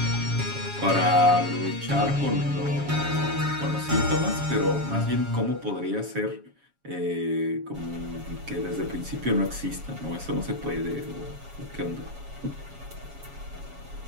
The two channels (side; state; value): left; late; 7.2 ms